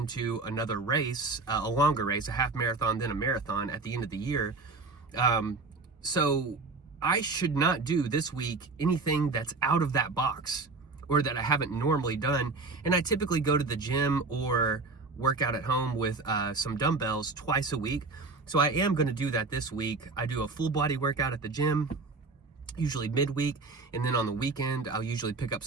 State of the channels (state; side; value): quieter; left; 3.8 dB